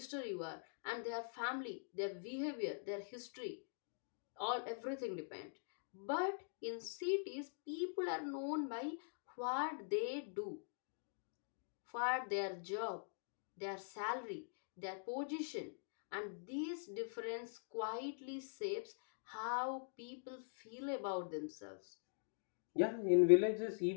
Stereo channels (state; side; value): silent; right; digital silence